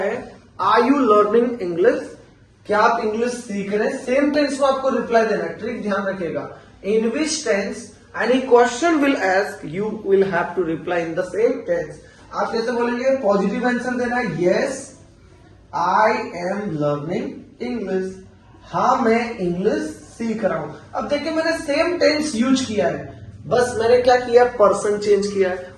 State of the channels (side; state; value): both; identical; correlation 1.00